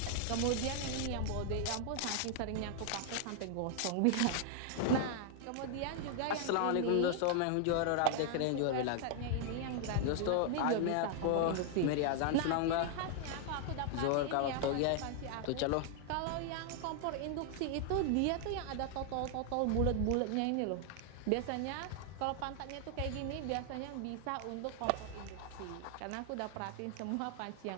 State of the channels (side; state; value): both; different; correlation 0.00